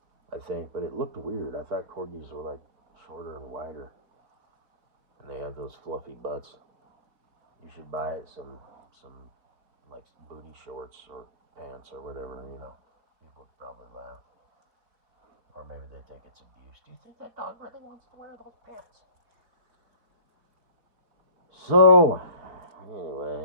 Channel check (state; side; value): late; left; 4.4 ms